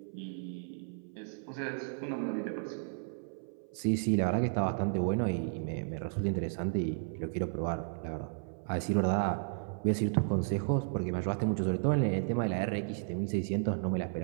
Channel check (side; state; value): left; silent; 55 dB below the other